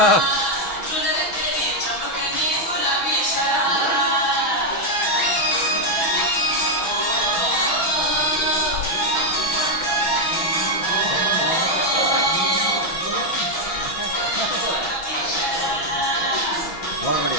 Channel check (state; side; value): late; right; 6.1 ms